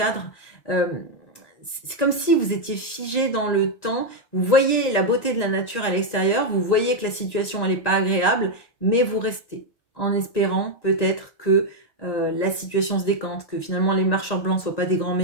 C'est comme si vous étiez figé dans le temps, vous voyez la beauté de la nature à l'extérieur, vous voyez que la situation elle n'est pas agréable, mais vous restez en espérant peut-être que la situation se décante, que finalement les marcheurs blancs ne soient pas des grands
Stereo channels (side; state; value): right; late; 1.9 ms